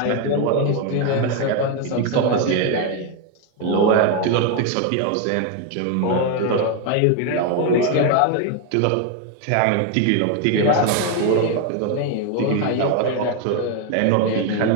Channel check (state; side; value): different; both; correlation 0.01